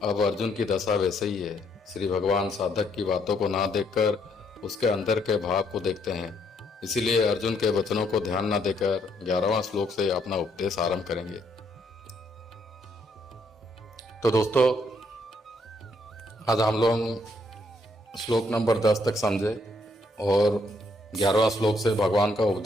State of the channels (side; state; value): both; normal; correlation 0.71